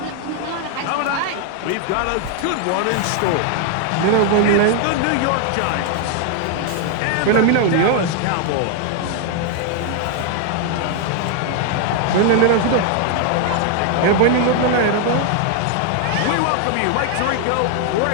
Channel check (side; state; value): both; different; correlation 0.00